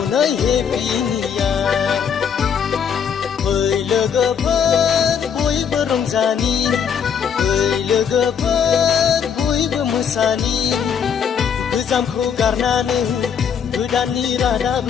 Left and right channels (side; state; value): right; quieter; 7.5 dB